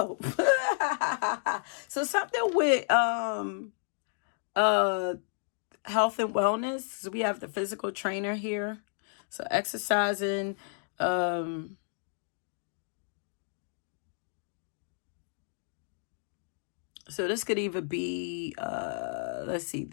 go. So something with health and wellness. So we have the physical trainer here. So exercising, so this could either be, let's see,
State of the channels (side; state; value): right; silent; digital silence